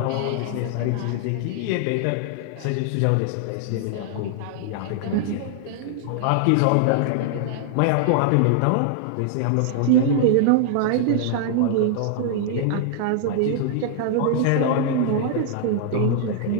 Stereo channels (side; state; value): both; different; correlation -0.01